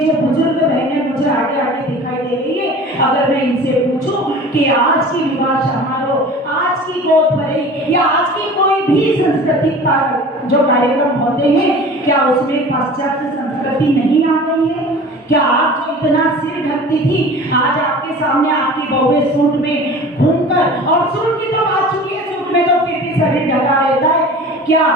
बुजुर्ग बहनें मुझे आगे आगे दिखाई दे रही है, अगर मैं इनसे पूछूं कि आज की विवाह समारोह, आज की गोद भराई या आज की कोई भी सांस्कृतिक जो कार्यक्रम होते हैं, क्या उसमें पाश्चात्य संस्कृति नहीं आ गई है? क्या आप जो इतना सिर ढकती थी, आज आपके सामने आपकी बहुएं सूट में घूमकर, और सूट की तो बात चुकी है, सूट में तो फिर भी शरीर ढका रहता है, क्या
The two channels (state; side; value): normal; both; correlation 0.40